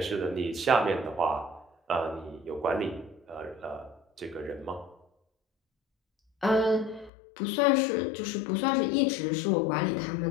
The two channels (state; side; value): drops out; right; at 7.1 s